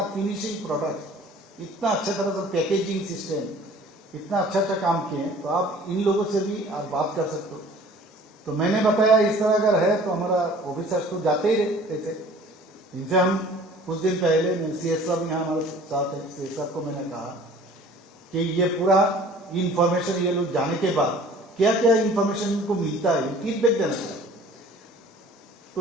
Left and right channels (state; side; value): normal; both; correlation 0.49